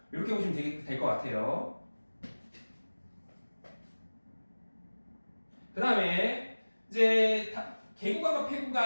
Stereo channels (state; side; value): inverted; both; correlation -1.00